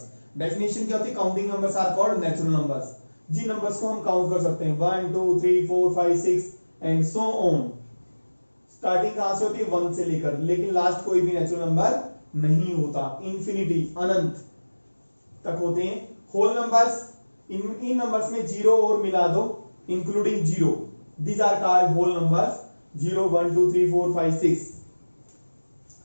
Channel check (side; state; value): both; inverted; correlation -1.00